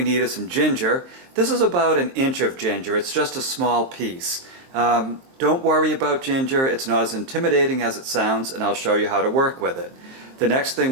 need is some ginger. This is about an inch of ginger. It's just a small piece. Don't worry about ginger. It's not as intimidating as it sounds, and I'll show you how to work with it. The next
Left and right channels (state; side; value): late; left; 23 ms